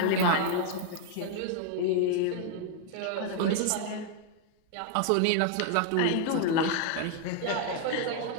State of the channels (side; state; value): both; different; correlation 0.00